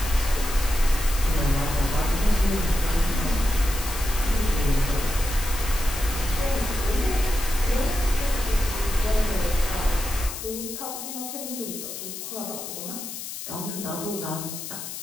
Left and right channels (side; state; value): left; noise; hiss, 8 dB below the sound